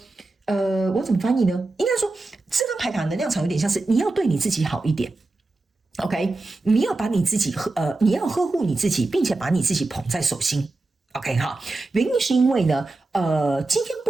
我怎么翻译呢？应该说这张牌卡能量场有点像是你要对你自己好一点。OK， 你要把你自己你要呵护你自己，并且把你自己捧在手心。OK 哈，原因是因为呢，今天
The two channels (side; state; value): left; quieter; 3.2 dB